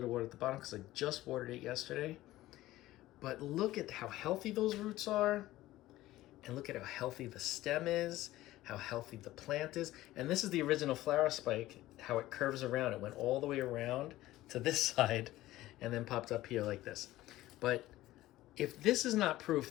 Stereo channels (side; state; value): right; quieter; 16.2 dB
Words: of water at the bottom because I just watered it yesterday. But look at how healthy those roots are, and look at how healthy the stem is, how healthy the plant is. And this is the original flower spike, how it curves around. It went all the way around to this side and then popped up here like this. But if this is not proof